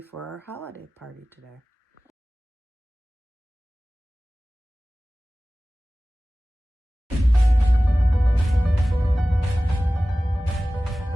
our holiday party today.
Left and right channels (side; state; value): both; normal; correlation 0.97